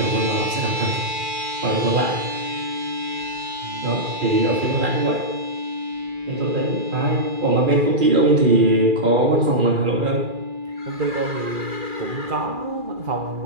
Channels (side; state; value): left; late; 2.4 ms